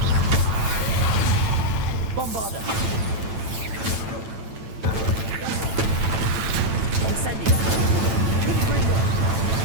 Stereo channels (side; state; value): left; late; 9.0 ms